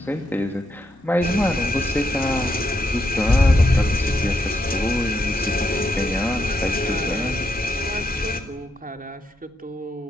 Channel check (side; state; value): both; normal; correlation 0.80